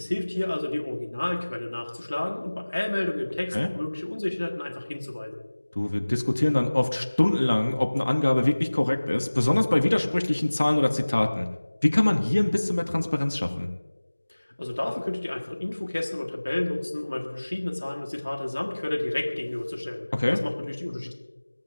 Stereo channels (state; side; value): inverted; both; correlation -1.00